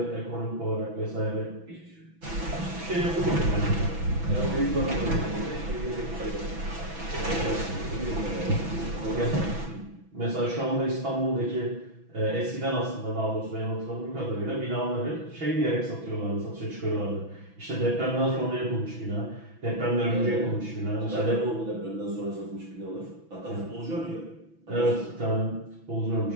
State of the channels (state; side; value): late; left; 6.1 ms